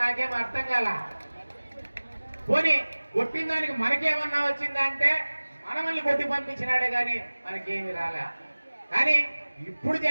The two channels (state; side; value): inverted; both; correlation -1.00